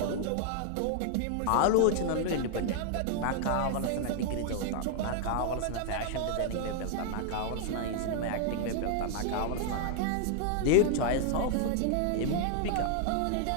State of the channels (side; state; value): both; different; correlation 0.00